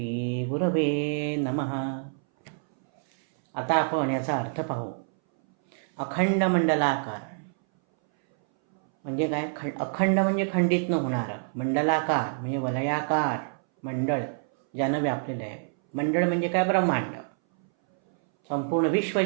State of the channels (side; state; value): left; silent; 60 dB below the other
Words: गुरवे नमः. आता आपण याचा अर्थ पाहू. अखंड मंडलाकार म्हणजे काय? अखंड म्हणजे खंडित न होणारं, मंडलाकार म्हणजे वलयाकार मंडळ ज्यानं व्यापलेलं आहे. मंडळ म्हणजे काय? ब्रह्मांड, संपूर्ण विश्व